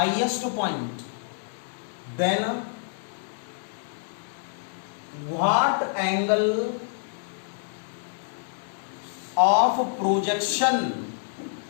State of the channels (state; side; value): silent; right; digital silence